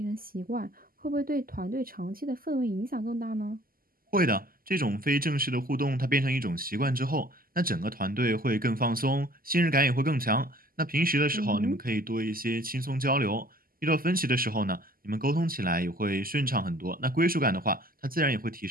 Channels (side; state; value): left; late; 0.42 ms